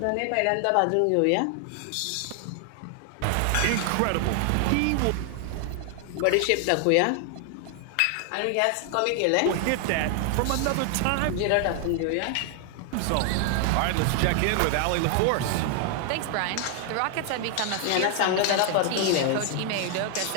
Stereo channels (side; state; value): both; different; correlation 0.00